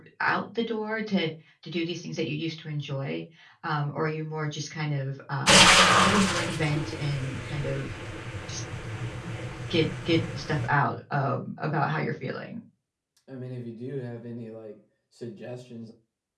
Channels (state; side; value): identical; both; correlation 1.00